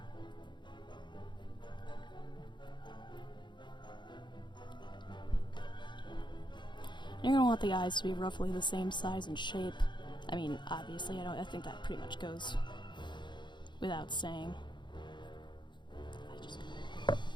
You're going to want the eyes to be roughly the same size and shape. I mean, obviously, I think that pretty much goes without saying.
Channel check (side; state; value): right; late; 0.22 ms